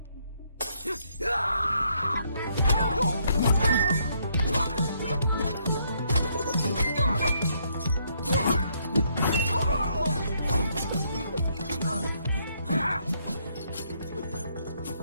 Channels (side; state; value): both; inverted; correlation -0.71